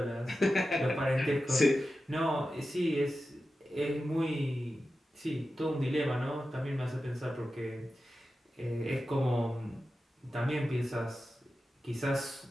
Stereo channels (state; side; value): normal; both; correlation 0.92